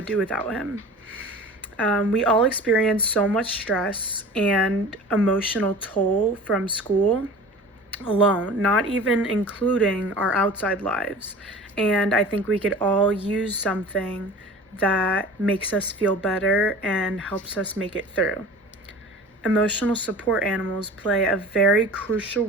do without him. We all experience so much stress and emotional toll from school alone, not even including our outside lives. And I think we could all use something that makes us feel better and helps us make it through. Emotional support animals play a very crucial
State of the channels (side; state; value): both; normal; correlation 0.40